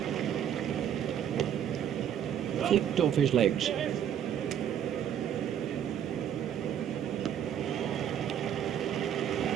Flicked off his legs.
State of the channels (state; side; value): quieter; left; 9.5 dB